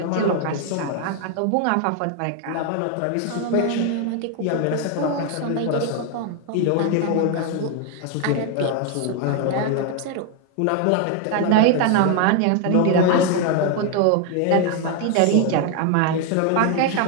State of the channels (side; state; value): both; different; correlation 0.01